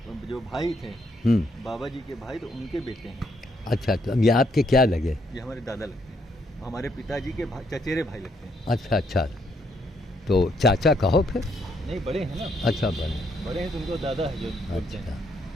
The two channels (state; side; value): normal; both; correlation 0.73